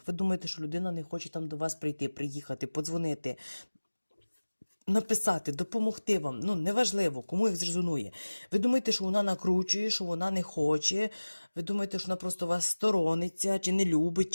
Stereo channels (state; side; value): inverted; both; correlation -1.00